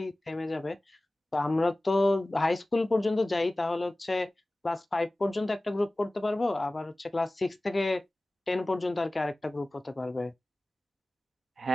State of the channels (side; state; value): both; normal; correlation 0.98